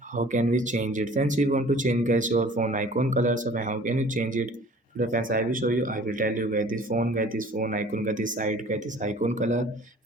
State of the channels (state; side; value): normal; both; correlation 0.49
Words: How can we change it? Friends, we want to change guys your phone icon colors. So how can you change it? Today friends I will show you. I will tell you guys this phone icon guys this side guys this icon color.